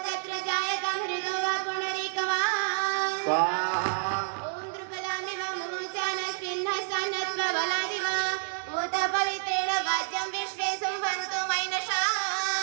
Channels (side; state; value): left; silent; 59 dB below the other